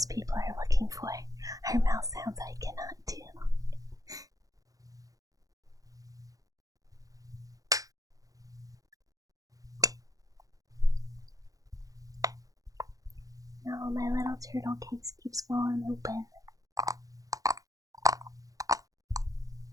people are looking for are mouth sounds I cannot do. No, my little turtle case keeps falling open.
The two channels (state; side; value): late; left; 0.17 ms